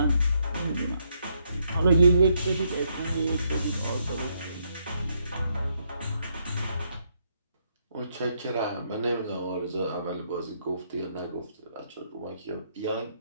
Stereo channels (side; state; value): both; inverted; correlation -0.74